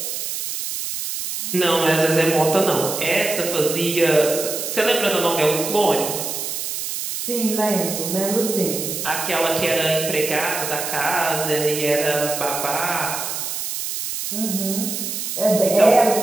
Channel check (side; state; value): right; noise; hiss, 4 dB below the sound